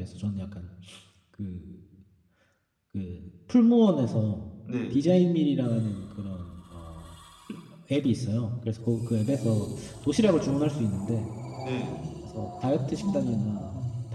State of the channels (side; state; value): both; identical; correlation 1.00